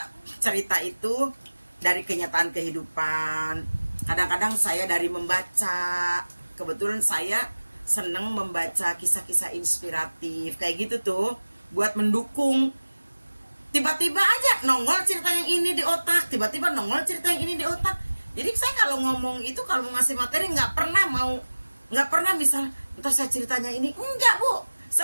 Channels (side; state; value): both; inverted; correlation -1.00